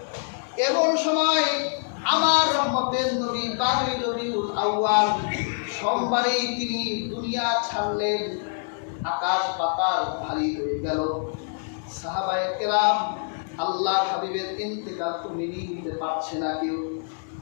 এমন সময় আমার রহমতের নবী 12ই রবিউল আউয়াল সোমবারেই তিনি দুনিয়া ছাড়লেন। আকাশ পাতাল ভারী হয়ে গেল। সাহাবায়ে কেরাম আল্লাহর হাবিবের ইন্তেকাল তো মেনে নিতে পারছে না কেউ।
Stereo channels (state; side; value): silent; right; digital silence